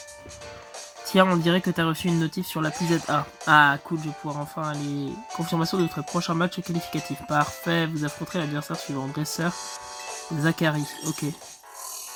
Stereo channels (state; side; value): identical; both; correlation 1.00